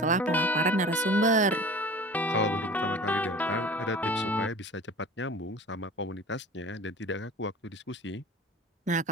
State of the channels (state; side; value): normal; both; correlation 0.40